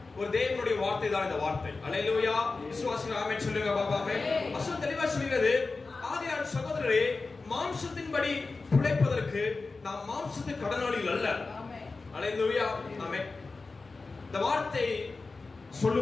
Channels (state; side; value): quieter; right; 3.9 dB